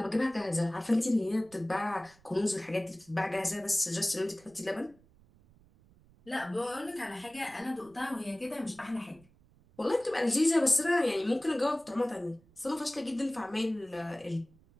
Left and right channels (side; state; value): right; noise; rumble, 29 dB below the sound